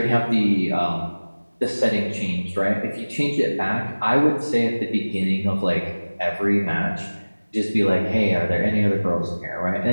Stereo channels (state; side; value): inverted; both; correlation -1.00